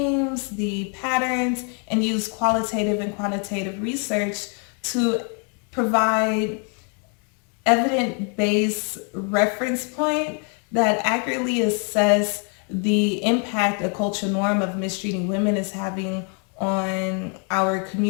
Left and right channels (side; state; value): right; quieter; 39.3 dB